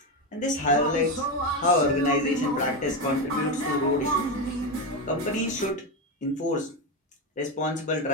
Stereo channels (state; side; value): normal; both; correlation 0.12